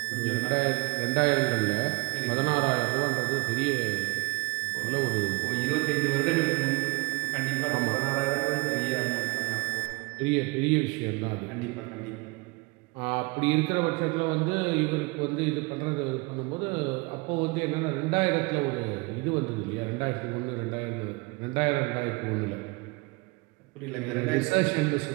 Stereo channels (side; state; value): left; quieter; 27.2 dB